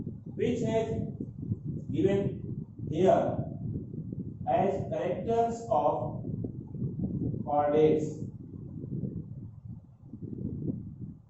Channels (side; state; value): both; identical; correlation 1.00